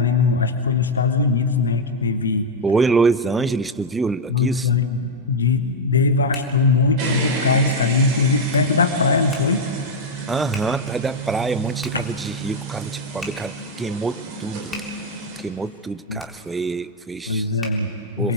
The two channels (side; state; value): both; normal; correlation 0.01